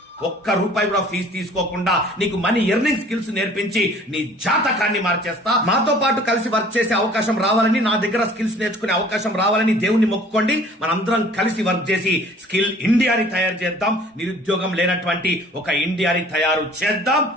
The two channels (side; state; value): both; normal; correlation 0.51